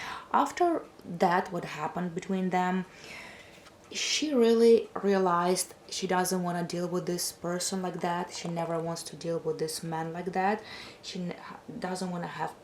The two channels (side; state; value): both; identical; correlation 1.00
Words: After that, what happened between them, she really realized she doesn't want to deal with this person like that. She never wants to deal with this man like that. She doesn't want to have